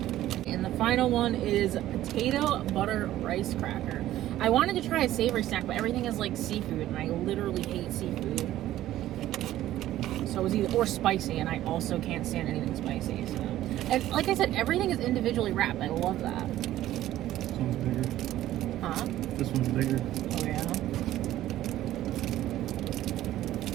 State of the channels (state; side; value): quieter; left; 13.8 dB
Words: And the final one is potato butter rice cracker. I wanted to try a savory snack, but everything is like seafood, and I literally hate seafood. So it was either, or spicy, and I also can't stand anything spicy. So, and like I said, everything is individually wrapped. I love that. This one's bigger. Huh? This one's bigger. Oh yeah.